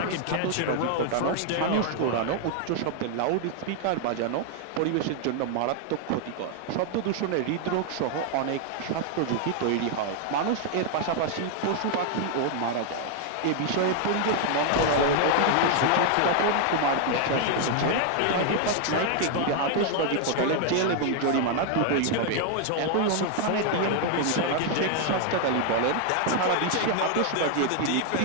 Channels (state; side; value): different; both; correlation 0.00